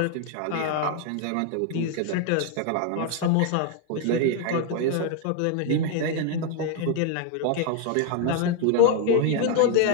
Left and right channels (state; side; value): different; both; correlation 0.00